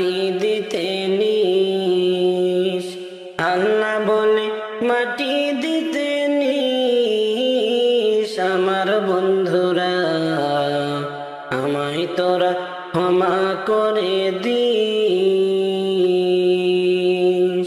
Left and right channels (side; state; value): both; identical; correlation 1.00